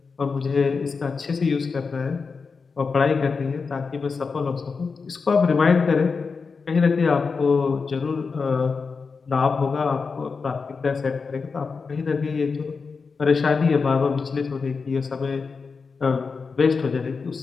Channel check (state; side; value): quieter; right; 4.9 dB